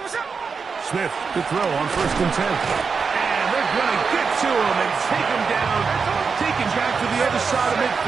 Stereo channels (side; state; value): left; quieter; 5.3 dB